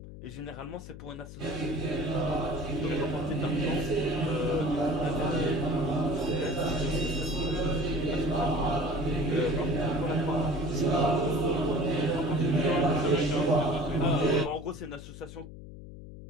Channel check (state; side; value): noise; left; hum, 14 dB below the sound